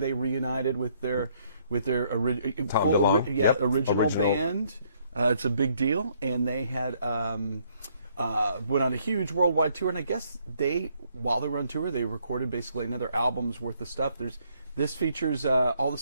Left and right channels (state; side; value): inverted; both; correlation -0.68